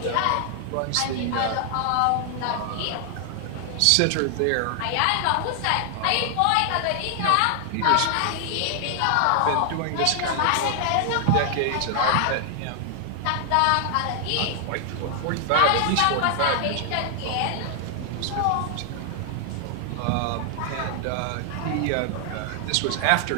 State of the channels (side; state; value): both; different; correlation 0.00